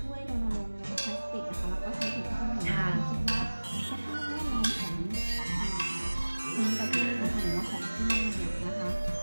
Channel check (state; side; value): inverted; both; correlation -1.00